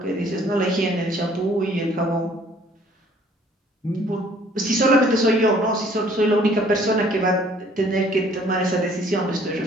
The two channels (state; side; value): normal; both; correlation 0.58